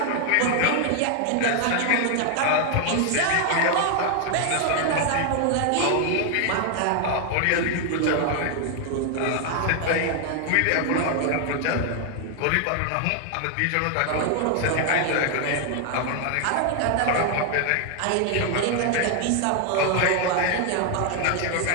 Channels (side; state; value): both; different; correlation 0.00